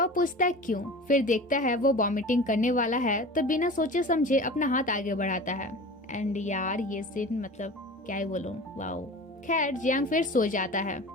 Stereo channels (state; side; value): normal; both; correlation 0.36